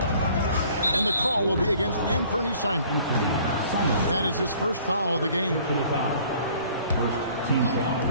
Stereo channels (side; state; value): both; inverted; correlation -0.55